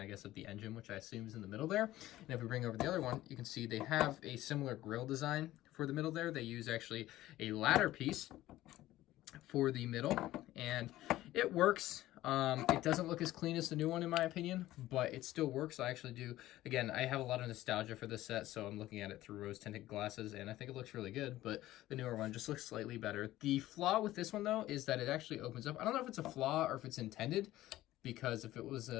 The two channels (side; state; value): right; quieter; 15.4 dB